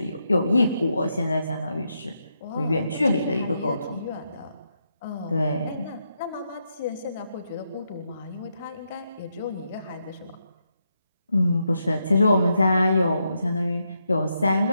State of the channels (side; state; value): both; inverted; correlation -0.82